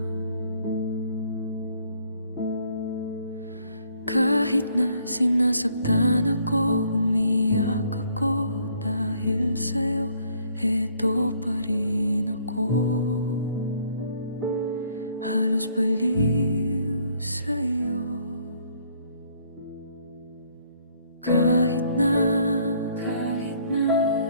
kahit na sinasaktan ako, umiyak ako dahil sa'yo, eto pa rin ako. Halos baliw sa'yo. Kahit na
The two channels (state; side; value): inverted; both; correlation -0.64